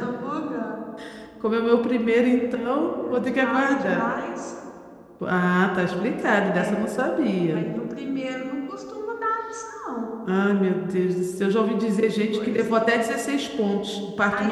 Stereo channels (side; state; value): both; identical; correlation 1.00